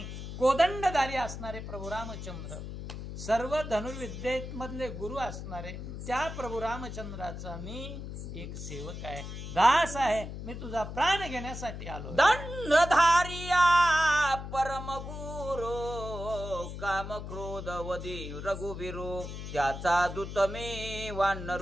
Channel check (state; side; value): noise; left; hum, 8 dB below the sound